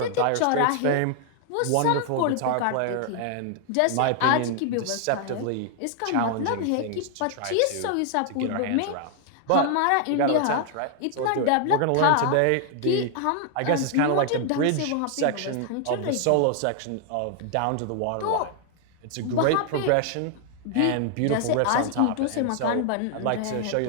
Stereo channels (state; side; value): different; both; correlation 0.00